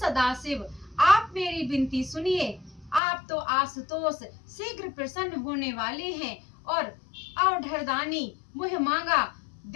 आप मेरी विनती सुनिए। आप तो आशुतोष शीघ्र प्रसन्न होने वाले हैं और अवढरदानी मुह मांगा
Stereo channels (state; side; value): drops out; right; at 3.0 s